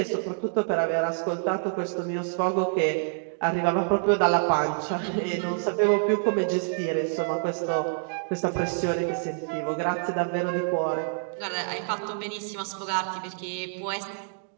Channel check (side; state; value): left; silent; digital silence